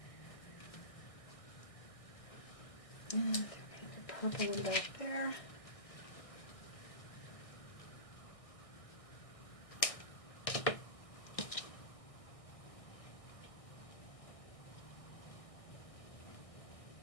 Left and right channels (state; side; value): late; right; 1.6 ms